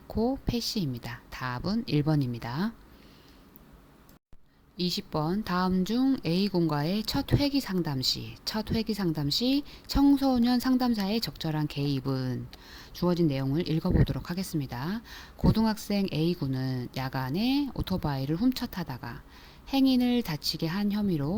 답은 1번입니다. 20번 다음 중 A군과의 첫 회기 상담 시 청소년 상담사의 적절한 개입은 주어진 내용을 읽어보도록 하겠습니다. 고등학생 A군은 야간에 오토바이를 훔쳐 타다가 행인을 다치게 한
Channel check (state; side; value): identical; both; correlation 1.00